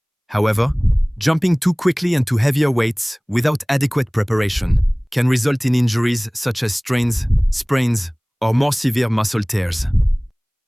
However, jumping too quickly into heavier weights without adequate preparation can result in injuries such as strains, sprains, or more severe muscle tears.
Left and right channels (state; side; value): identical; both; correlation 1.00